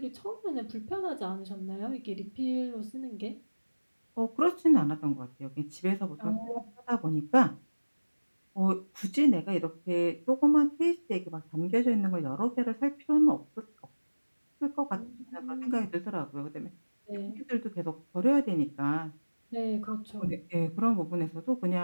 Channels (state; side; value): inverted; both; correlation -1.00